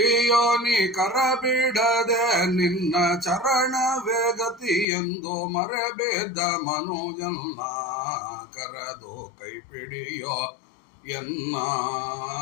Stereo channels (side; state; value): right; drops out; at 4.9 s